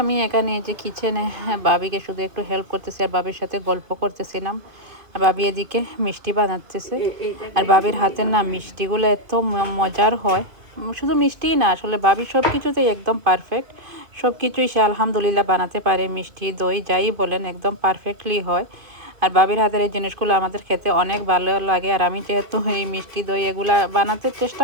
আমি এখানে যে কিচেনে ভাবিকে শুধু একটু হেল্প করতেছি আর ভাবির সাথে গল্প করতেছিলাম। আর ভাবি এদিকে মিষ্টি বানাতেছে। আর ভাবির হাতের না মিষ্টিগুলো এত মজার হয়। শুধু মিষ্টিই না, আসলে ভাবি সব কিছুতেই একদম পারফেক্ট। সব কিছুই সে আলহামদুলিল্লাহ বানাতে পারে, মিষ্টি দই যাই বলেন একদম পারফেক্টলি হয়। আর ভাবির হাতের এই জিনিসগুলো আমাদের খেতে অনেক ভালো লাগে। আর আমি যেহেতু এই মিষ্টি দই এগুলা বানাতে চেষ্টা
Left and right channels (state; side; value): late; left; 2.5 ms